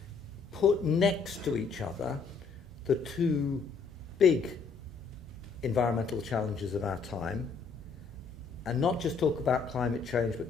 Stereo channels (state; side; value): quieter; right; 5.1 dB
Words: put next to each other the two big environmental challenges of our time, and not just talk about climate change, but